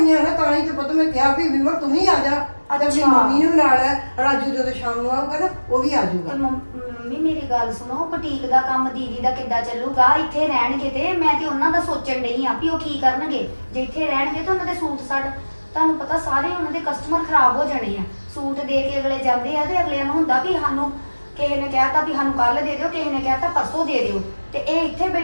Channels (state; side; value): inverted; both; correlation -1.00